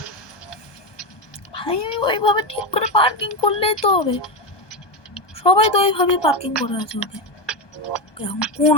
ভাই, আমি ওইভাবে ঠিক করে পার্কিং করলেই তো হবে। সবাই তো ওইভাবে পার্কিং করে আছে। ওকে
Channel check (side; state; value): right; late; 1.2 ms